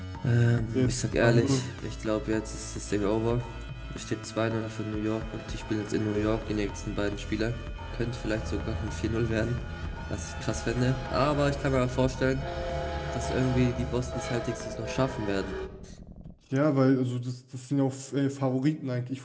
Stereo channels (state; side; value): identical; both; correlation 1.00